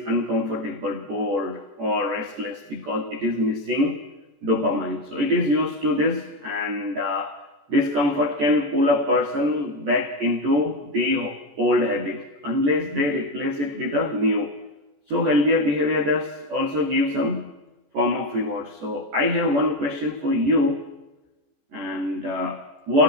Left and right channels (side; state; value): left; late; 14 ms